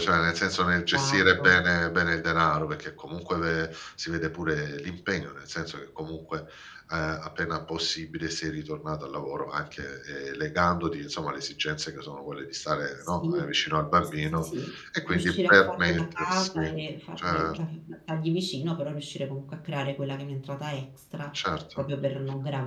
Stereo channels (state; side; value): identical; both; correlation 1.00